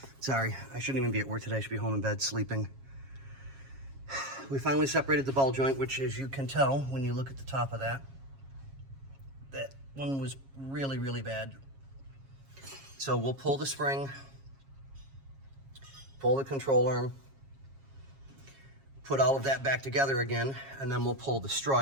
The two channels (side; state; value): left; late; 7.4 ms